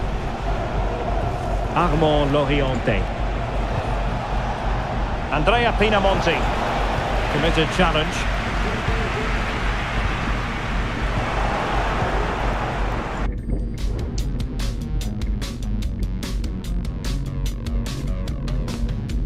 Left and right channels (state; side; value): identical; both; correlation 1.00